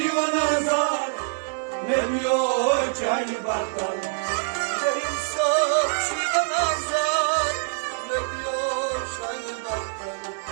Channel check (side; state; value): left; silent; 62 dB below the other